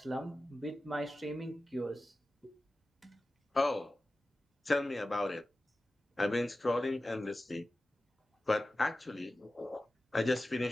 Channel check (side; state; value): both; normal; correlation 0.95